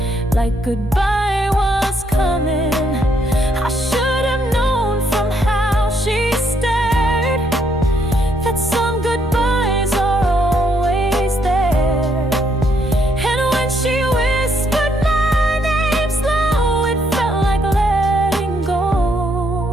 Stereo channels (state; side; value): normal; both; correlation 0.73